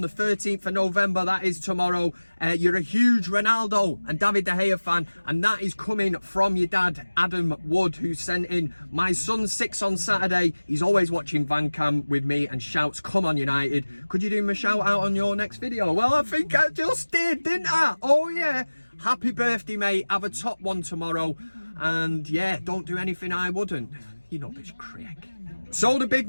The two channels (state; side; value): inverted; both; correlation -1.00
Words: 13th of November, that is tomorrow. You're a huge Ronaldo and David De Gea fan, and that is coming from your dad, Adam Wood, who sent in, my son's 6 on Saturday. He's always watching VanCam with me and shouts, come on United. Could you do him a shout out on your next video? Well, I think I just did, didn't I? Oh yeah. Happy birthday, mate. Have a top one tomorrow. And yeah, don't do anything I wouldn't. You know this Craig. So the big